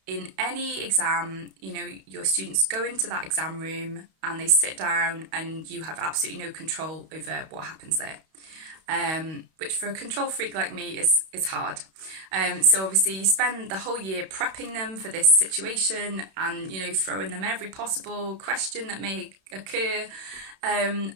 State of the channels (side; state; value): left; late; 31 ms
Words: in any exam, your students go into that exam room and they sit down and you have absolutely no control over what happens there. Which for a control freak like me is hard. So obviously you spend the whole year prepping them for this situation and, throwing them every possible question that may occur. And